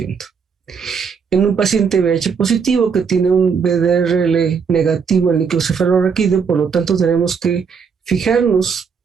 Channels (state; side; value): quieter; left; 6.1 dB